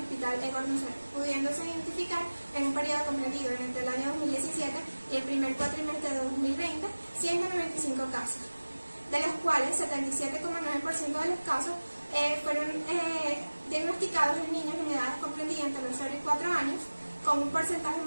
Hospital Edward Lucerda, pudiéndose identificar en un periodo comprendido entre el año 2017 y el primer cuatrimestre de 2020 195 casos, de los cuales 77,9% de los casos fueron diagnosticados en niños en edades comprendidas entre los 0 y 4 años, con un porcentaje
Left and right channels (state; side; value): inverted; both; correlation -1.00